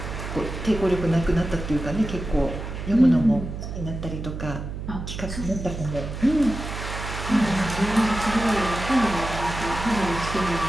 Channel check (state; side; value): noise; right; hum, 7 dB below the sound